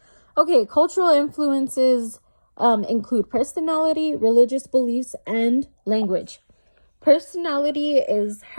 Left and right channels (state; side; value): inverted; both; correlation -1.00